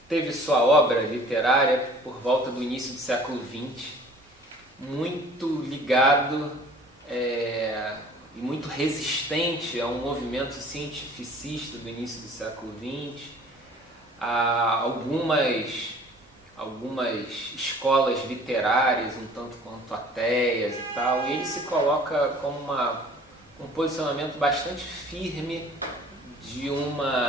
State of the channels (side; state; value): both; normal; correlation 0.50